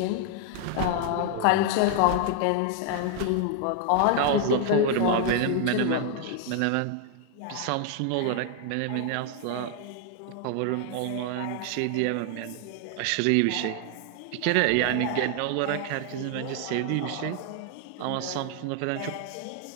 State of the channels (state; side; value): different; both; correlation 0.00